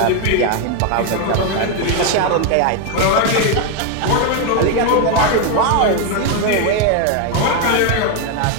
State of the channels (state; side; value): different; both; correlation 0.01